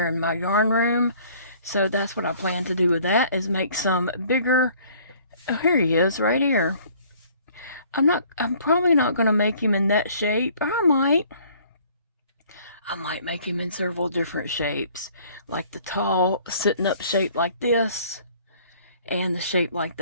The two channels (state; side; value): inverted; both; correlation -0.56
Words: in my yarn room. So that's what I plan to do with that, is make some bigger. Oh, here he is, right here. I'm probably not going to make him in that shape. Or I might make him in several different shapes, like the tall sitting up shape like this, and the shape like